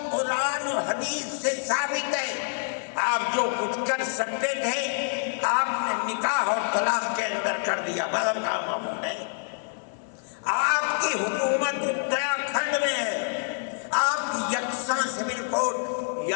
قرآن و حدیث سے ثابت ہے؟ آپ جو کچھ کر سکتے تھے آپ نے نکاح اور طلاق کے اندر کر دیا، مذہب کا معمول ہے۔ آپ کی حکومت اتراکھنڈ میں ہے، آپ یکساں سول کوڈ،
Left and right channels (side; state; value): right; silent; 60 dB below the other